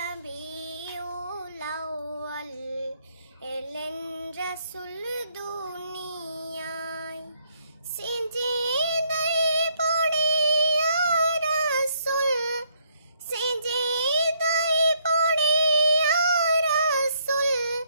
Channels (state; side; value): inverted; both; correlation -0.70